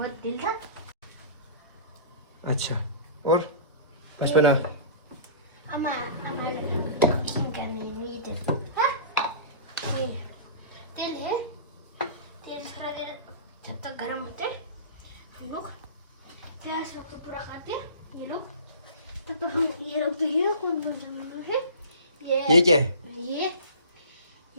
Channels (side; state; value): both; inverted; correlation -0.38